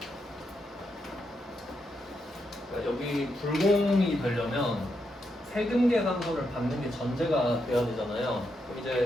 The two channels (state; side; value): normal; both; correlation 0.82